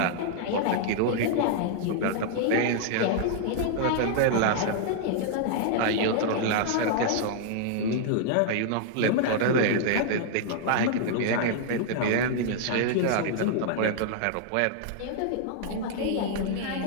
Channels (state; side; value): different; both; correlation -0.01